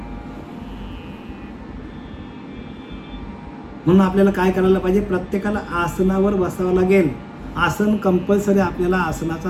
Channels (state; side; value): identical; both; correlation 1.00